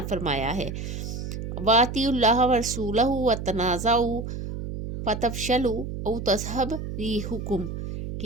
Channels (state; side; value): noise; right; hum, 6 dB below the sound